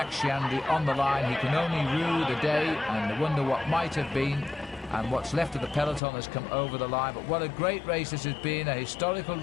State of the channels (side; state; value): right; drops out; at 6.0 s